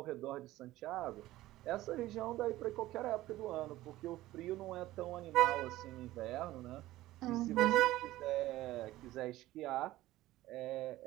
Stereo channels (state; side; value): quieter; left; 16.3 dB